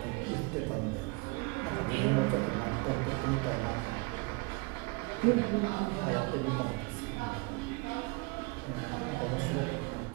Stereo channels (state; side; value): quieter; left; 27.5 dB